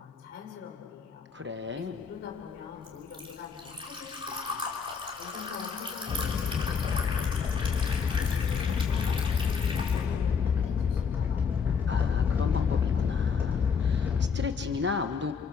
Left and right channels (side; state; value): right; quieter; 6.1 dB